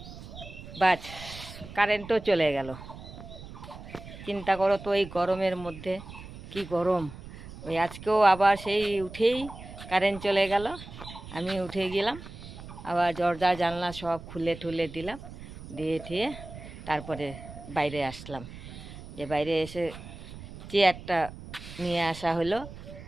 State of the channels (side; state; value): right; noise; rumble, 14 dB below the sound